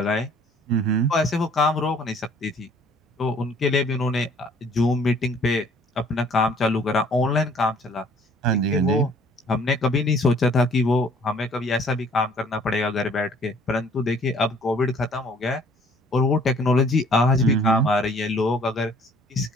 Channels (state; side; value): normal; both; correlation 0.56